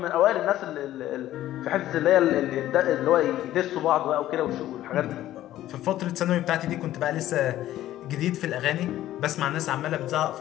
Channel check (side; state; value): right; quieter; 13.7 dB